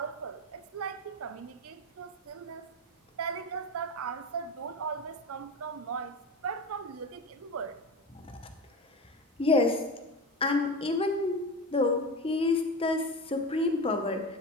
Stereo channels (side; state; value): both; normal; correlation 0.26